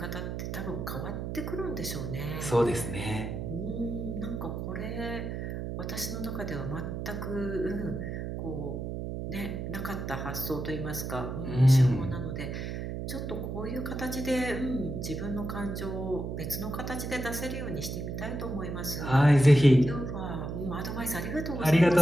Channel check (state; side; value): noise; right; hum, 4 dB below the sound